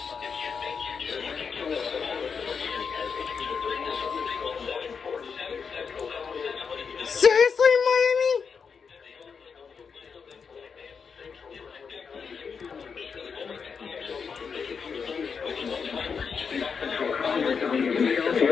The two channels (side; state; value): right; quieter; 6.0 dB